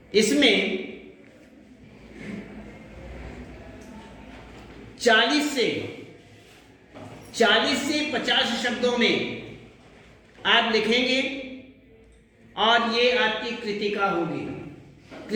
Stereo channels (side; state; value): both; identical; correlation 1.00